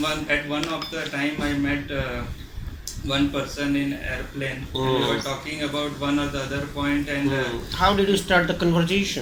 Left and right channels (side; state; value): both; identical; correlation 1.00